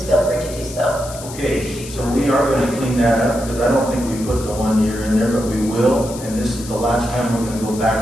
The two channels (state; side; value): noise; left; hiss, 14 dB below the sound